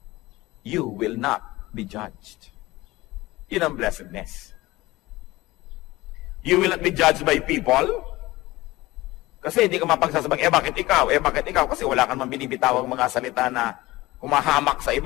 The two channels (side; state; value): right; quieter; 19.3 dB